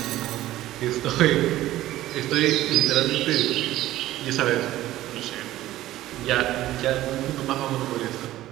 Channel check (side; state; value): left; quieter; 15.0 dB